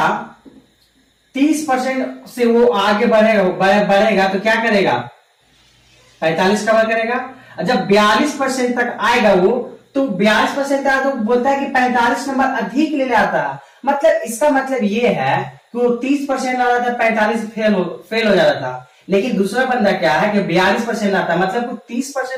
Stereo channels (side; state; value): both; identical; correlation 1.00